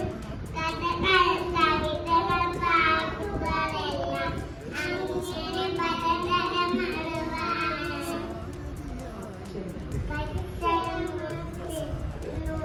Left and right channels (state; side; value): identical; both; correlation 1.00